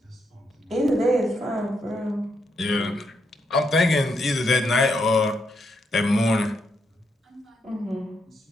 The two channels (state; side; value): normal; both; correlation 0.80